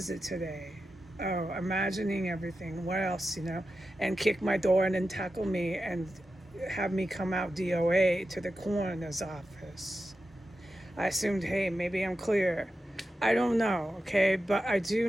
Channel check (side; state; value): both; normal; correlation 0.91